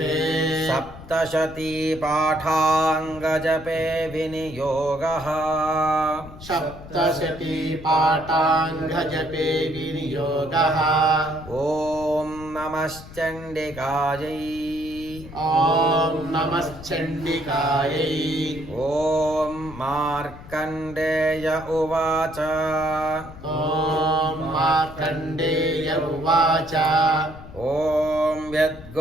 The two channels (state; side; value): noise; left; rumble, 16 dB below the sound